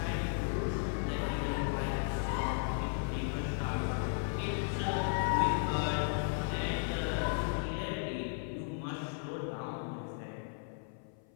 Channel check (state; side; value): silent; right; 54 dB below the other